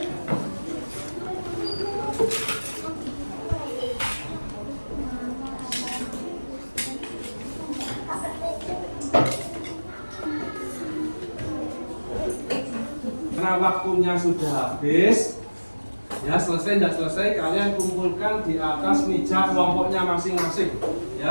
Karena waktunya sudah habis, ya, selesai tidak selesai kalian kumpulkan di atas meja kelompoknya masing-masing,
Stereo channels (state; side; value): inverted; both; correlation -1.00